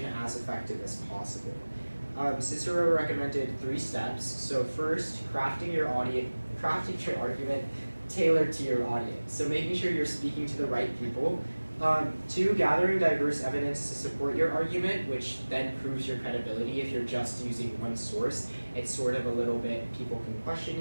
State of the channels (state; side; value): inverted; both; correlation -1.00